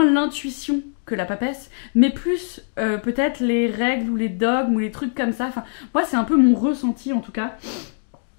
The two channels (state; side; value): silent; right; digital silence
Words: l'intuition que la papesse, mais plus peut-être les règles ou les dogmes ou les trucs comme ça. Enfin, moi, c'est un peu mon ressenti en tout cas.